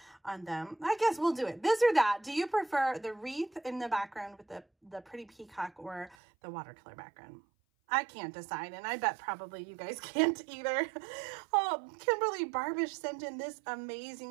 on them. I guess we'll do it. This or that. Do you prefer the wreath in the background with the pretty peacock or the watercolor background? I can't decide, and I bet probably you guys can't either. Oh, Kimberly Barbish sent in this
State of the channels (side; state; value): left; drops out; at 6.2 s